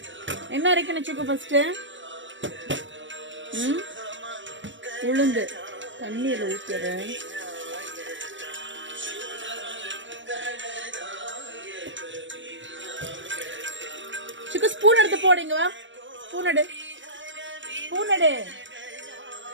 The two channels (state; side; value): late; left; 0.55 ms